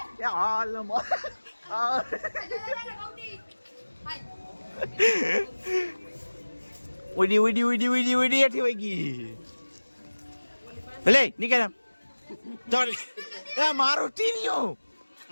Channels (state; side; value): inverted; both; correlation -1.00